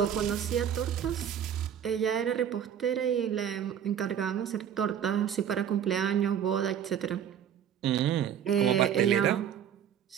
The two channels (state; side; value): quieter; left; 9.2 dB